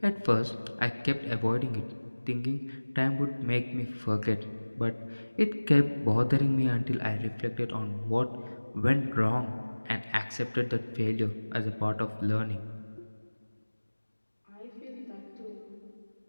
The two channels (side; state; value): both; inverted; correlation -1.00